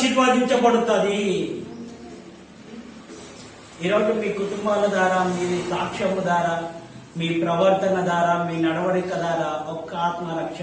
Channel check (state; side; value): identical; both; correlation 1.00